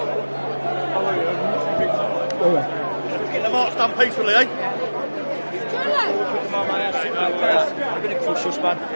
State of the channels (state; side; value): inverted; both; correlation -1.00